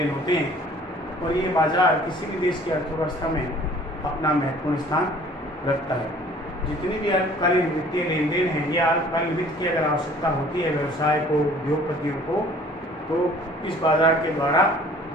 होते हैं और ये बाजार किसी भी देश की अर्थव्यवस्था में अपना महत्वपूर्ण स्थान रखता है। जितनी भी अल्पकालीन वित्तीय लेन देन हैं, ये अल्पकालीन वित्त की अगर आवश्यकता होती है व्यवसाय को, उद्योगपतियों को, तो इस बाजार के द्वारा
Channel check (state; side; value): normal; both; correlation 0.52